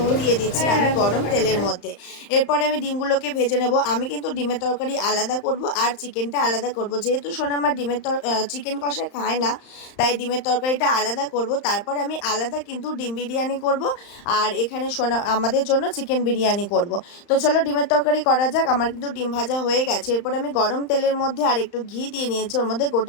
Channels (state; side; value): late; right; 35 ms